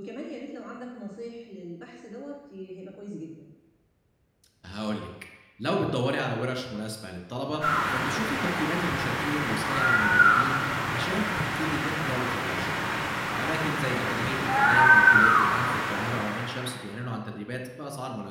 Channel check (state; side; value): identical; both; correlation 1.00